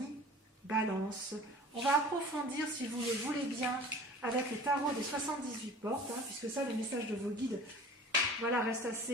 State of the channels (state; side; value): normal; both; correlation 0.43